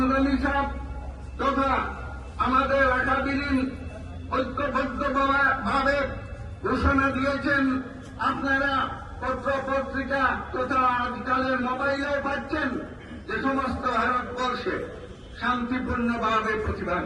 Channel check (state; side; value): identical; both; correlation 1.00